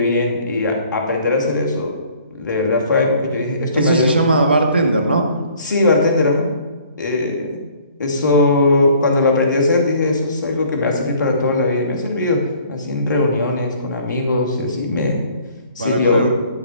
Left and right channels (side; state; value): both; inverted; correlation -0.56